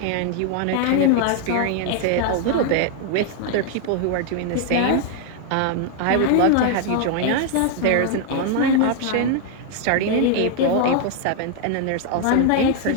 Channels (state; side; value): different; both; correlation 0.00